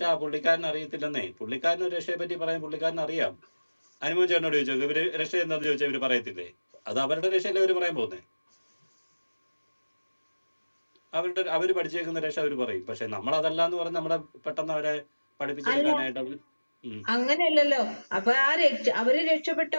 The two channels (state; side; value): inverted; both; correlation -1.00